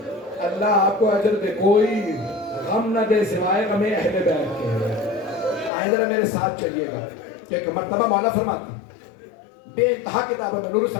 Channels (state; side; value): drops out; right; at 5.7 s